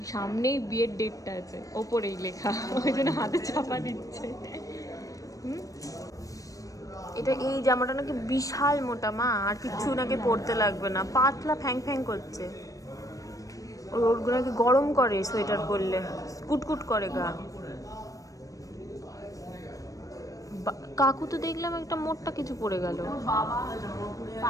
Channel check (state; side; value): late; right; 0.16 ms